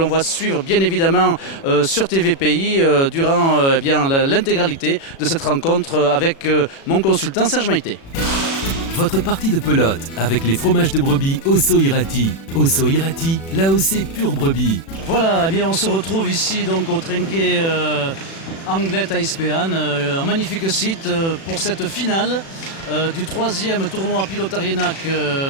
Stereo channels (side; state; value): right; late; 36 ms